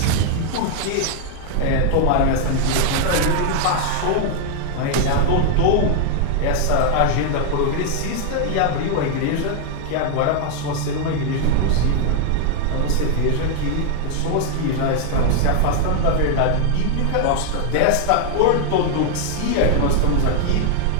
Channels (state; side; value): different; both; correlation 0.00